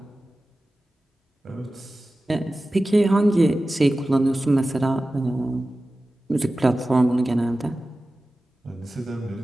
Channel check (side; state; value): both; normal; correlation 0.95